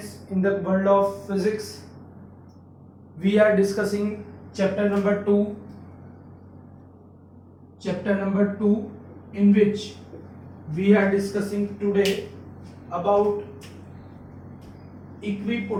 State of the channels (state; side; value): identical; both; correlation 1.00